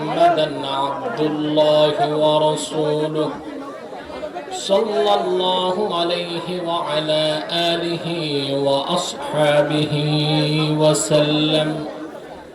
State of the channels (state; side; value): identical; both; correlation 1.00